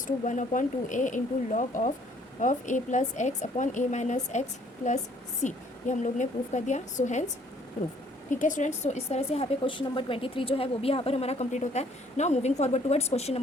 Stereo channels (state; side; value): normal; both; correlation 0.61